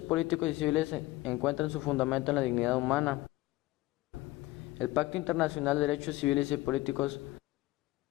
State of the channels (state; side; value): quieter; right; 18.6 dB